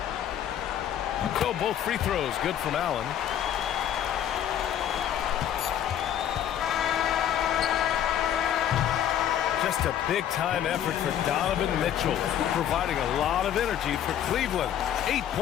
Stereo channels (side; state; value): right; quieter; 10.3 dB